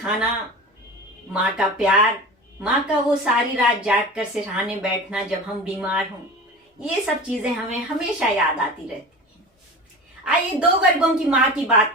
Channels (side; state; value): both; normal; correlation 0.33